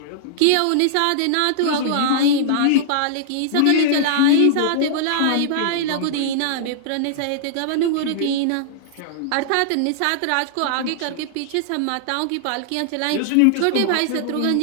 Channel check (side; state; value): both; different; correlation -0.01